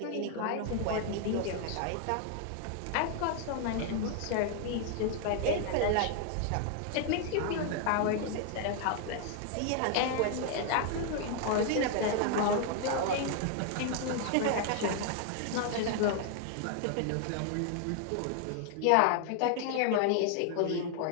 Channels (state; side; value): different; both; correlation 0.00